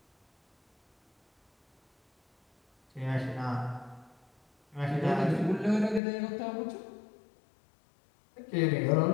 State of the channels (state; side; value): drops out; right; at 6.0 s